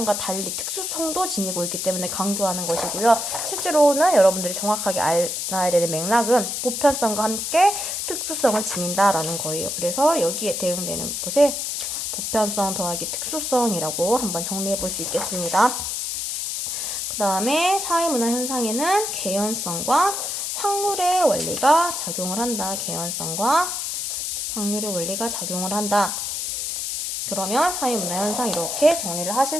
달리 특수성도 지니고 있기 때문에 강조하는 것이고요. 실제로는 여러분들이 정확하게 알아야 되는 맥락은 보편성과 함께 특수성을 지닌다 라는 거예요. 그래서 여기에 대응되는 것에 보편성 더하기 특수성이라고 한번 정리해 볼 수 있겠습니다. 그 다음에 사회문화 현상에는 개연성과 확률의 원리가 작용을 한다. 개연성과 확률의 원리가 작용을 한다. 그러면 사회문화현상 이렇게 정리를 하실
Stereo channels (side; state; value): left; noise; hiss, 3 dB below the sound